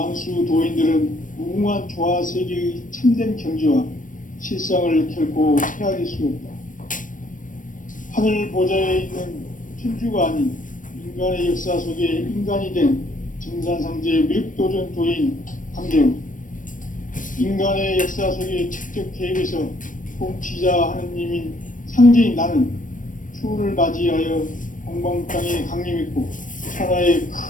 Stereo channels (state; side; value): late; right; 0.38 ms